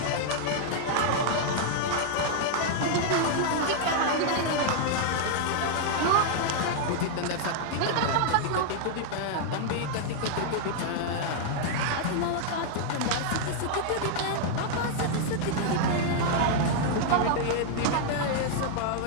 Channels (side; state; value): both; different; correlation 0.00